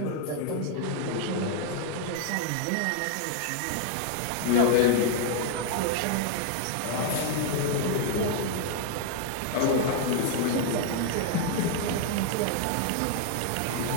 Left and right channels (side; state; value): both; different; correlation 0.00